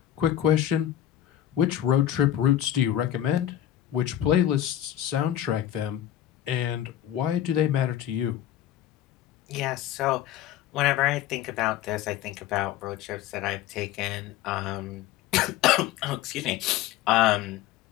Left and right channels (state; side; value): quieter; right; 11.8 dB